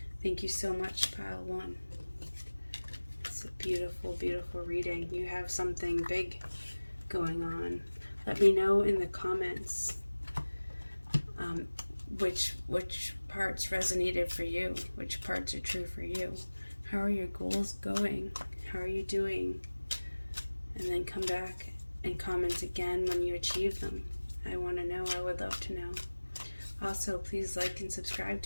Thank you so much, pile 1. It's a beautiful, beautiful reading. You have something big going on. Let me know in the comments which parts resonated for you, which parts are true for you. How are your goals going? How are you doing? And then come back and comment again when you achieve them. I want to know. I would love to know. Also, please like and subscribe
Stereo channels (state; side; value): inverted; both; correlation -1.00